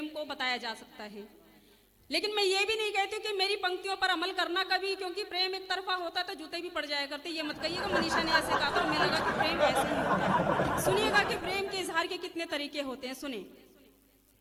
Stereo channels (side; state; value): both; identical; correlation 1.00